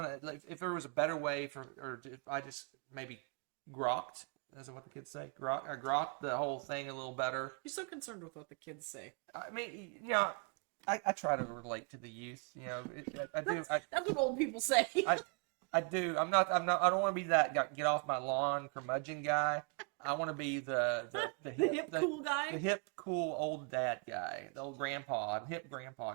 like, if there was a better way or if I just maybe grokked, is what the kids say? Grokked the whole thing a little better. You're so concerned with what the kids say. I mean, you know, I try to relate to the youth. You know, I do. That's what old people say. I do. I'm not. I don't want to be that get off my lawn curmudgeon guy. I want to be the hip cool guy. the hip cool old dad guy, the old hip grandpa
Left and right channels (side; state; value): left; quieter; 35.4 dB